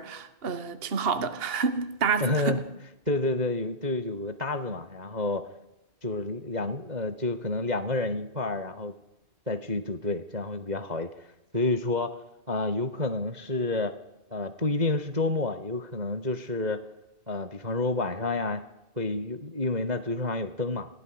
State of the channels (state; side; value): late; left; 2.7 ms